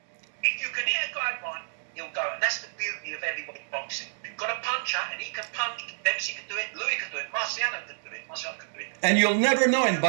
if you can hit a guy right, he'll go. And that's the beauty of heavyweight boxing. You've got a puncher, and he can punch. Dempsey can do it. Louis can do it. Marciano can do it. And you'll never know in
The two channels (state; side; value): silent; left; digital silence